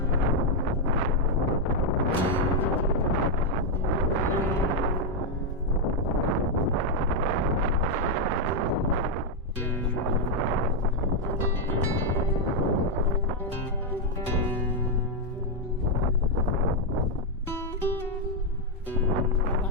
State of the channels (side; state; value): both; normal; correlation -0.01